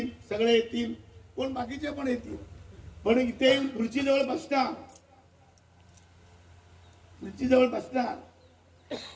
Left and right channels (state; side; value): identical; both; correlation 1.00